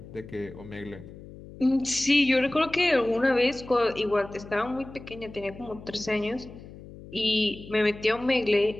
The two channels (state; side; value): noise; left; hum, 16 dB below the sound